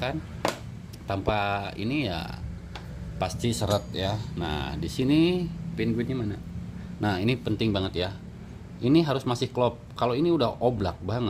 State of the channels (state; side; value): identical; both; correlation 1.00